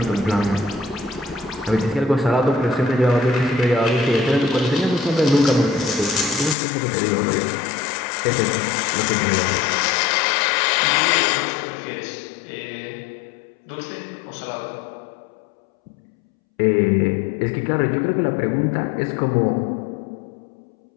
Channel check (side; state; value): right; drops out; at 6.6 s